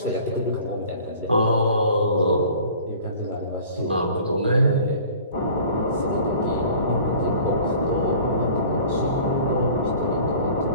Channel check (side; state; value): both; inverted; correlation -0.46